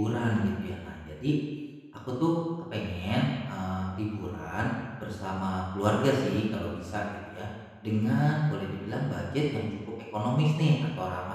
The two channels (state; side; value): identical; both; correlation 1.00